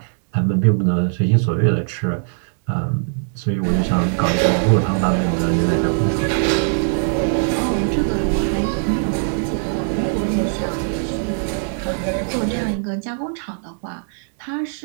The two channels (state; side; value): silent; left; digital silence